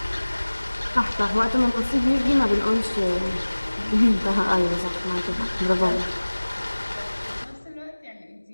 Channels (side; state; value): both; inverted; correlation -1.00